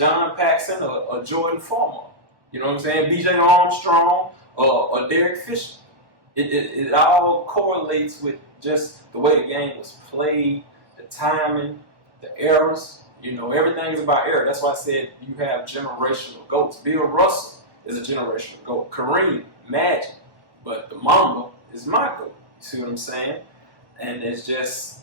Paxson or Jordan Farmar? You know what I'm saying? B.J. Armstrong or Derek Fisher. It all correlates with just the way the game was played, the timing, the errors. You know, everything is about error. That's why I said you have generational GOATs. Bill Russell is a generational GOAT. Kareem, Magic. But the Mamba is my GOAT. You see what I'm saying? And it's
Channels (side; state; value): left; late; 1.0 ms